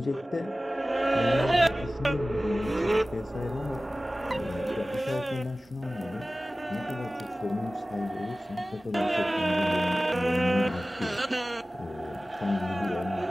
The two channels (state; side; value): normal; both; correlation 0.97